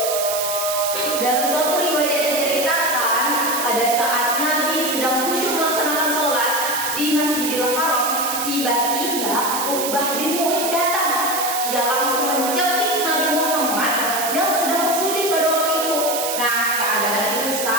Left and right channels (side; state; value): right; noise; hiss, 3 dB below the sound